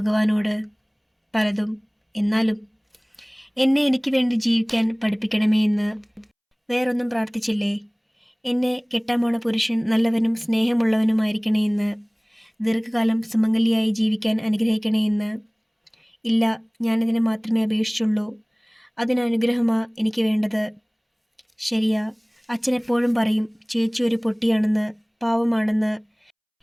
പലതും. എന്നാലും എന്നെ എനിക്ക് വേണ്ടി ജീവിക്കാൻ പഠിപ്പിക്കണമേ എന്ന്. വേറൊന്നും പ്രാർത്ഥിച്ചില്ലേ? എന്നെ കെട്ടാൻ പോണ പുരുഷൻ നല്ലവനും സ്നേഹമുള്ളവനുമായിരിക്കണേ എന്ന്. ദീർഘകാലം സുമംഗലിയായി ജീവിക്കാൻ അനുഗ്രഹിക്കണേ എന്ന്. ഇല്ല, ഞാനിതിനെ മാത്രമേ അപേക്ഷിച്ചുള്ളൂ. അതിനനുഗ്രഹമാ എനിക്ക് വേണ്ടത്. ശരിയാ, അച്ഛനെപ്പോഴും പറയും ചേച്ചി ഒരു പൊട്ടിയാണെന്ന്, പാവമാണെന്ന്.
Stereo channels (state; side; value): identical; both; correlation 1.00